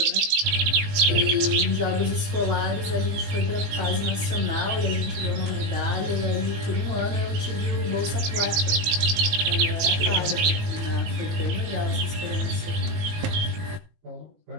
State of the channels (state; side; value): late; left; 19 ms